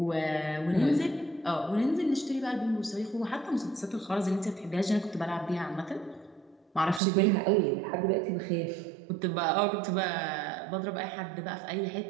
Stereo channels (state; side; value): drops out; left; at 7.0 s